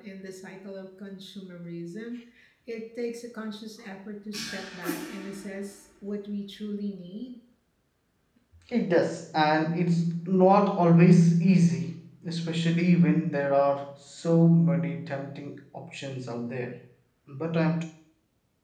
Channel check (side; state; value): both; identical; correlation 1.00